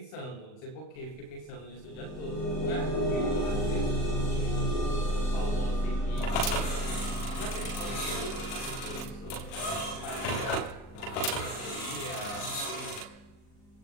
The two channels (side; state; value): right; late; 39 ms